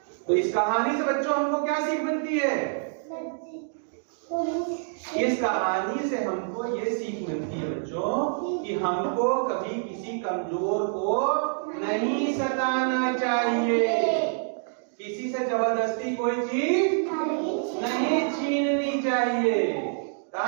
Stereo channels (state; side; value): silent; left; digital silence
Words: तो इस कहानी से बच्चों हमको क्या सीख मिलती है? इस कहानी से हमको ये सीख मिलती है बच्चों कि हमको कभी किसी कमजोर को नहीं सताना चाहिए, किसी से जबरदस्ती कोई चीज नहीं छीननी चाहिए।